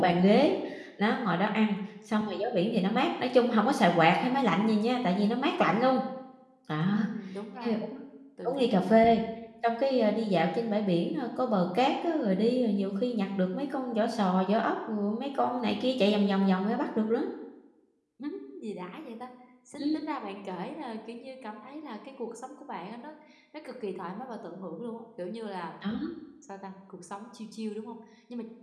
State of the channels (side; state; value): both; identical; correlation 1.00